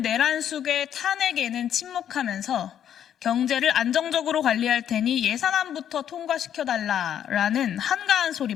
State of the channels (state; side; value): quieter; right; 9.7 dB